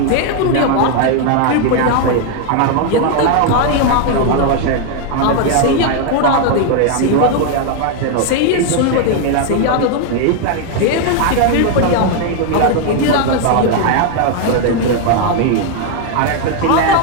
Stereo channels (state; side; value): different; both; correlation 0.01